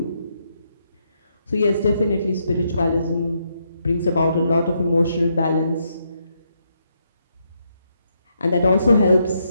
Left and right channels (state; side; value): inverted; both; correlation -0.78